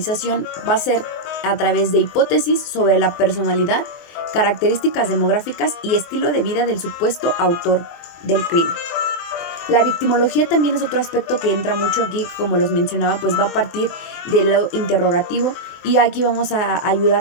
va a ser a través de hipótesis sobre la personalidad, características demográficas y estilo de vida del supuesto autor del crimen. La victimología también es otro aspecto que entra mucho aquí, como les mencionaba, pues va a partir de lo interrogativo y aquí vamos a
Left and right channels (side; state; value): right; late; 24 ms